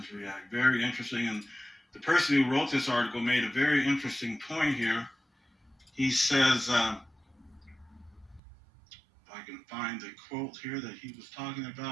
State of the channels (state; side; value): drops out; left; at 8.4 s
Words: react? Very interesting. And the person who wrote this article made a very interesting point here. He says, if I can find the quote here that he was talking